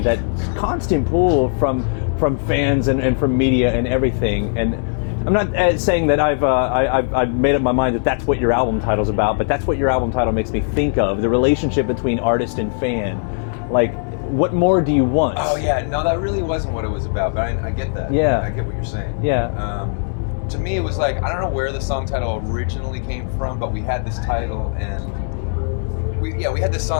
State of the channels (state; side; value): silent; right; 66 dB below the other